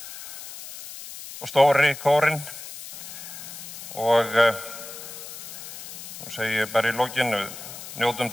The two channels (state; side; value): noise; left; hiss, 12 dB below the sound